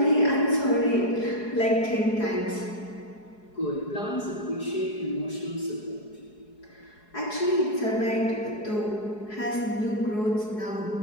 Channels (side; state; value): right; late; 4.7 ms